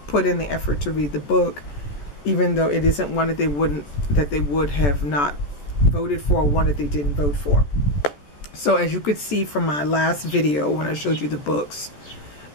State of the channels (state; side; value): late; right; 14 ms